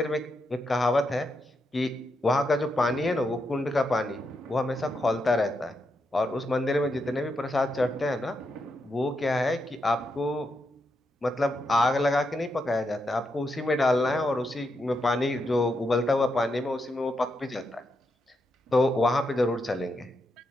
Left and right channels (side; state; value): both; normal; correlation 0.83